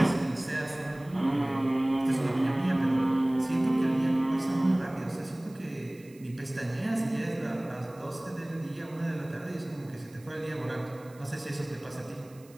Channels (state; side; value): noise; right; hiss, 27 dB below the sound